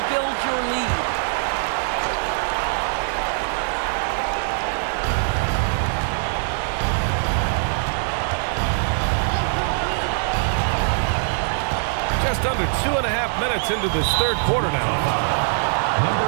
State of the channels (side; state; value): left; silent; digital silence